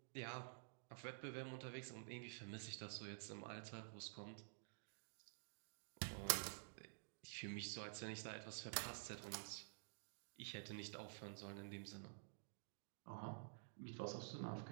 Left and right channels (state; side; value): silent; left; digital silence